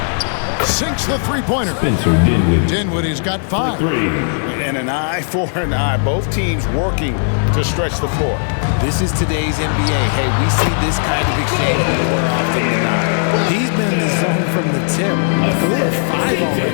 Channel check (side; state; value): right; silent; digital silence